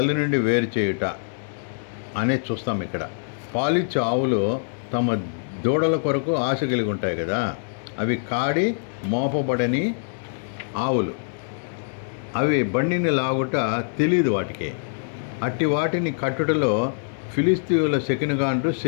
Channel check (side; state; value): right; silent; 63 dB below the other